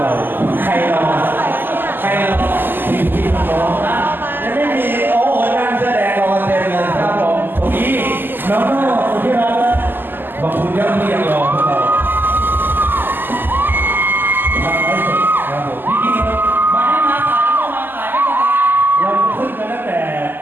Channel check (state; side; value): late; left; 0.093 ms